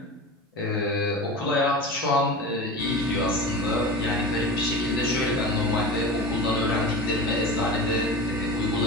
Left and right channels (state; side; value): normal; both; correlation 0.31